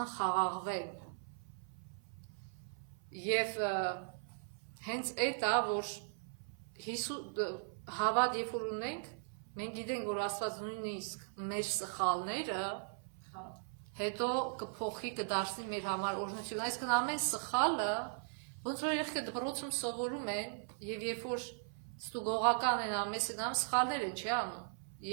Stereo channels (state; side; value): silent; left; 52 dB below the other